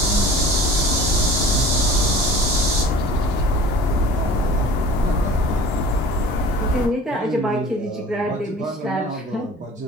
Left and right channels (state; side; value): normal; both; correlation 0.44